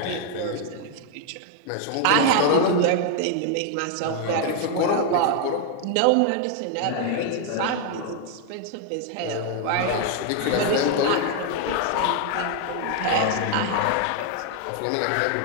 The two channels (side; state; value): both; different; correlation 0.00